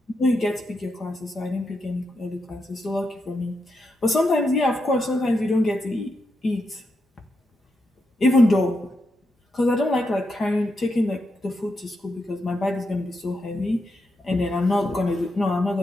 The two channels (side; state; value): both; normal; correlation 0.84